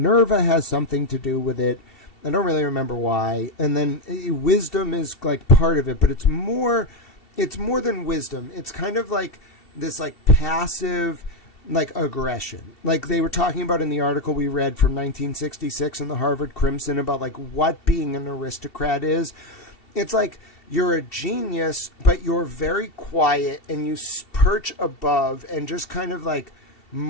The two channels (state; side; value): late; right; 2.7 ms